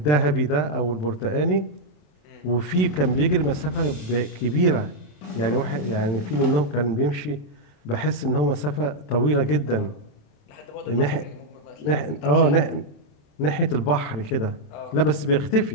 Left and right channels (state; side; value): late; right; 27 ms